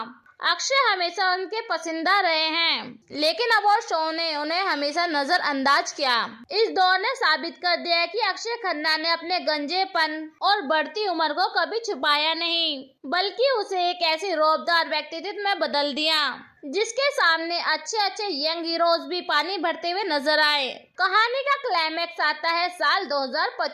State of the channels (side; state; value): both; identical; correlation 1.00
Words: अक्षय हमेशा उनके पसंदीदा रहे हैं, लेकिन अवार्ड शो ने उन्हें हमेशा नजरअंदाज किया। इस दौर ने साबित कर दिया कि अक्षय खन्ना ने अपने गंजेपन और बढ़ती उम्र को कभी छुपाया नहीं, बल्कि उसे एक ऐसी रौबदार व्यक्तित्व में बदल दिया जिसके सामने अच्छे यंग हीरोज भी पानी भरते हुए नजर आए। कहानी का क्लाइमैक्स आता है साल